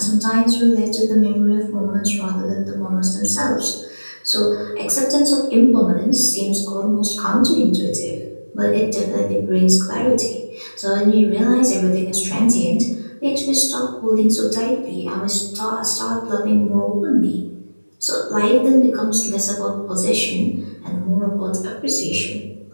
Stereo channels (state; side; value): inverted; both; correlation -1.00